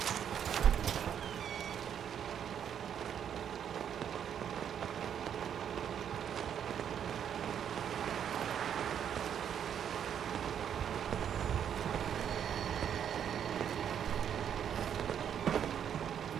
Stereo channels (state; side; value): quieter; left; 8.8 dB